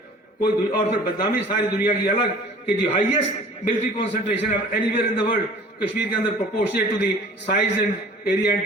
کوئی اور پھر بدنامی ساری دنیا کی الگ کہ جو highest military concentration anywhere in the world, Kashmir کے اندر proportionate to the size and area and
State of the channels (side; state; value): both; normal; correlation 0.47